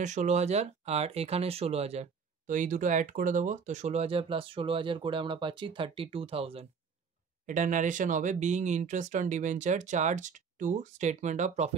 16,000 আর এখানের 16,000, তো এই দুটো অ্যাড করে দেবো, তো 16,000 প্লাস 16,000 করে আমরা পাচ্ছি 32,000। এটা ন্যারেশন হবে, being interest on debenture charged to statement of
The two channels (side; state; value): left; quieter; 5.9 dB